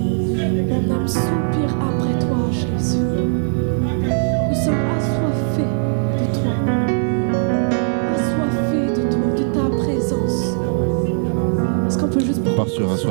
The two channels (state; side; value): silent; left; digital silence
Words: mon âme soupire après toi, Jésus. Nous sommes assoiffés de toi, assoiffés de toi, de ta présence. Est-ce qu'on peut juste prendre part sur